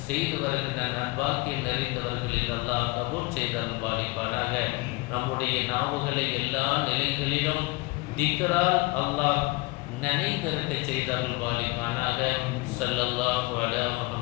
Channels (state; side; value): quieter; right; 23.7 dB